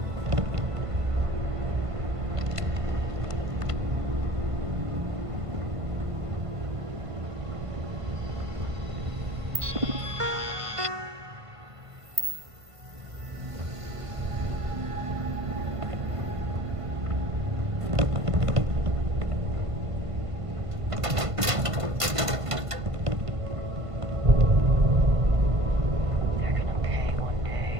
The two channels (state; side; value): late; left; 1.5 ms